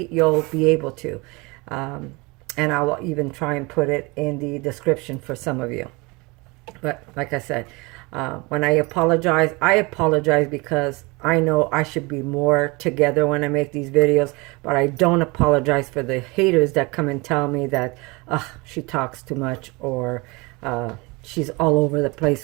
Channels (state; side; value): quieter; left; 26.0 dB